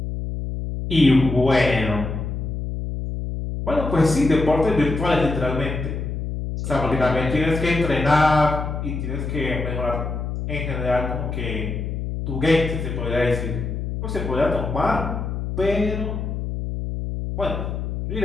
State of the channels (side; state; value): left; noise; hum, 4 dB below the sound